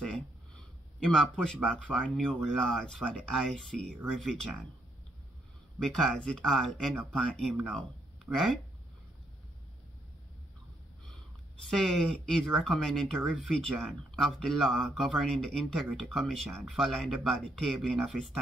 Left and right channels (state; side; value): normal; both; correlation 0.76